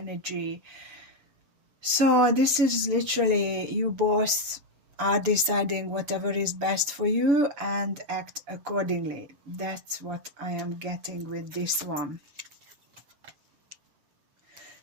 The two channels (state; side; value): late; left; 7.0 ms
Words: So this is literally you both are deciding whatever is best for you and act accordingly. That's what I am getting with this one.